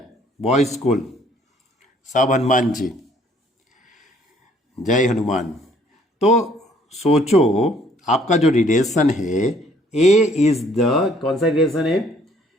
बॉयज स्कूल। सब हनुमान जी, जय हनुमान। तो सोचो आपका जो रिलेशन है, ए इज द, कौन सा रिलेशन है?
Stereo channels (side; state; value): both; normal; correlation 0.62